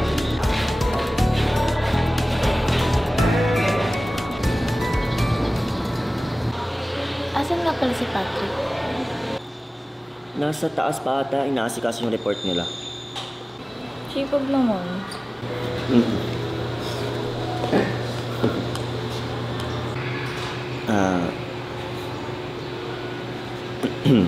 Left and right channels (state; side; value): normal; both; correlation 0.98